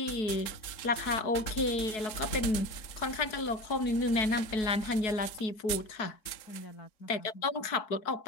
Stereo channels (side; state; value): right; late; 3.8 ms